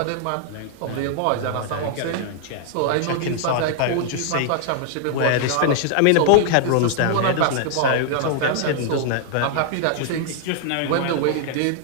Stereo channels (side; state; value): both; different; correlation -0.01